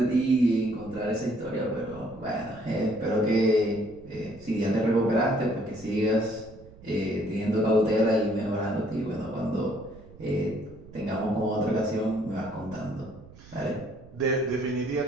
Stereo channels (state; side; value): noise; right; rumble, 20 dB below the sound